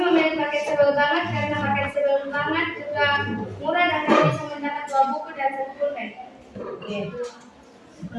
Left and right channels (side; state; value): both; identical; correlation 1.00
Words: memilih paket sebel banget karena paket sebel banget juga murah dan kami bisa mendapat 2 buku dan 1 pulpen. Oke.